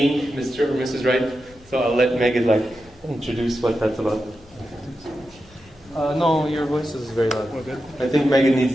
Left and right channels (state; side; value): normal; both; correlation 0.89